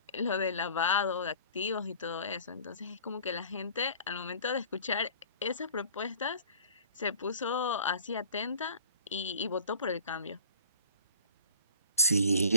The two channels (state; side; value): inverted; both; correlation -0.47